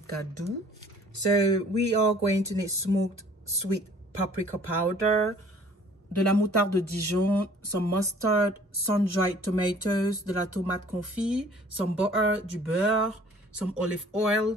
doux. So we are going to need smoked sweet paprika powder, de la moutarde de Dijon, some mustard, sun-dried tomatoes, de la tomate confit, some butter, du beurre, some olive oil,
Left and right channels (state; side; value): normal; both; correlation 0.54